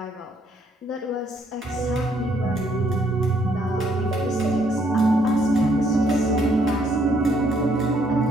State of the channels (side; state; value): both; normal; correlation 0.69